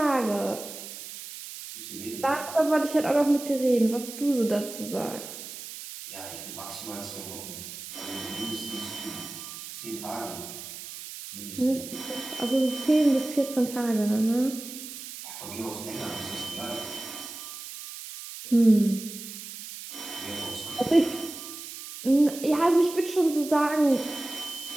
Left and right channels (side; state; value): right; noise; hiss, 11 dB below the sound